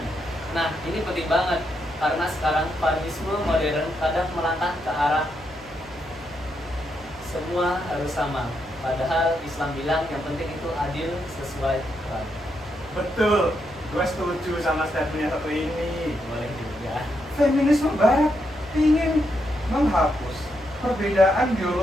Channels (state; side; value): noise; right; hum, 23 dB below the sound